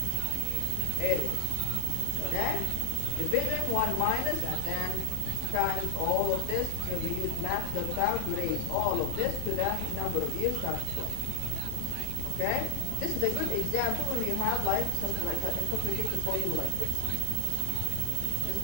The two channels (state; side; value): different; both; correlation 0.00